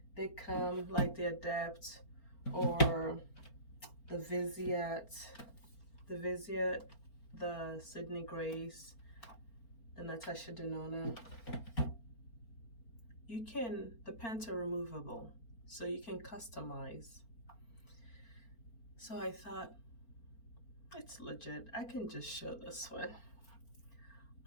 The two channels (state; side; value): late; right; 4.4 ms